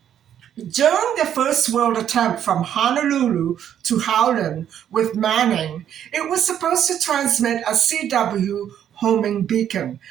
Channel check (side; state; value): left; quieter; 9.9 dB